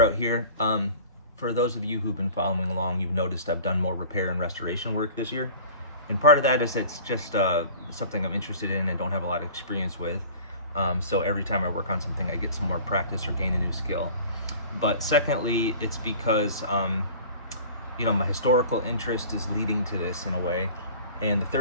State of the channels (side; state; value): both; inverted; correlation -0.43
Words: here. For those of you who've been following along, you've noticed I've done more repair and restoration work this year. And part of that is it's just something I'm interested in and don't have a lot of experience with. So every time I work on something, I get some more practice or gain a new skill. But secondly, it's because my historical interest is leading to this in a way. And the